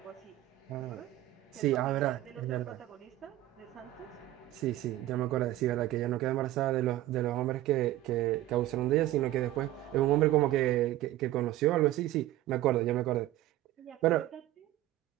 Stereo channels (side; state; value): left; quieter; 15.0 dB